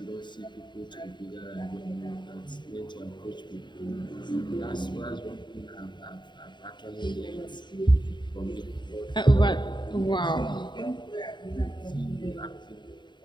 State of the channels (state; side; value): late; right; 0.22 ms